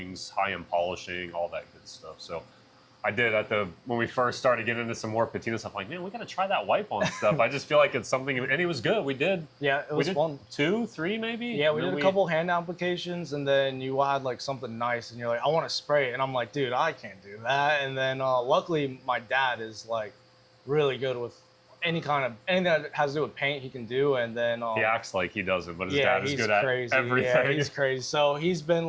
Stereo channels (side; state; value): both; identical; correlation 1.00